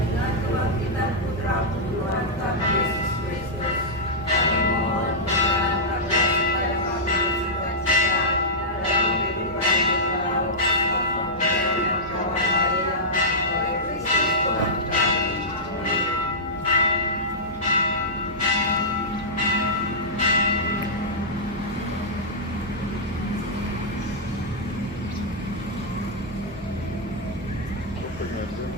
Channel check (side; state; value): right; noise; hum, 17 dB below the sound